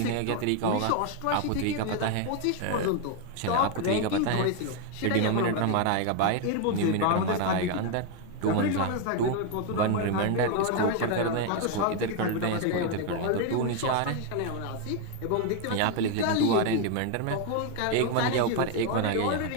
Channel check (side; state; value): both; different; correlation 0.01